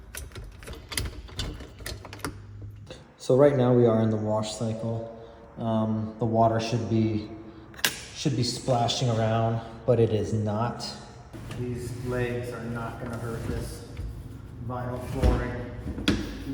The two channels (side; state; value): both; identical; correlation 1.00